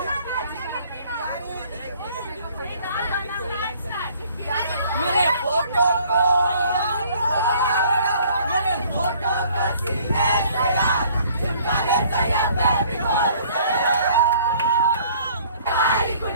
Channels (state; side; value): inverted; both; correlation -0.57